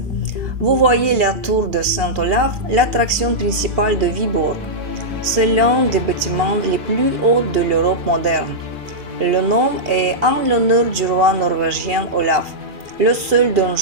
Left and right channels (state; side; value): late; left; 2.7 ms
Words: Vous voyez la tour de Saint-Olaf, l'attraction principale de Vyborg. C'est l'un des bâtiments les plus hauts de l'Europe moderne. Le nom est en l'honneur du roi norvégien Olaf, le seul